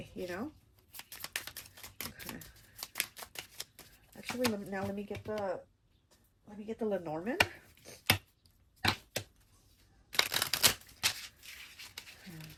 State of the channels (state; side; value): identical; both; correlation 1.00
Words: you know? Okay. Actually, let me get the Lenormand.